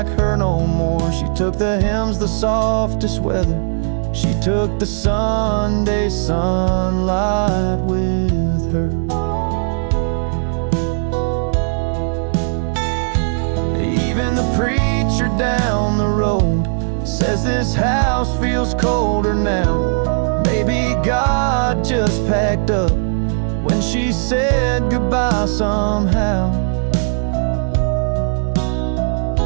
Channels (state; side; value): silent; left; digital silence